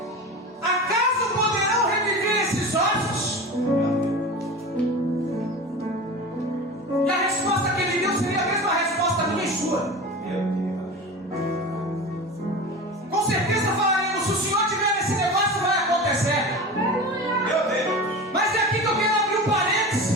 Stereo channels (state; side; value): normal; both; correlation 0.31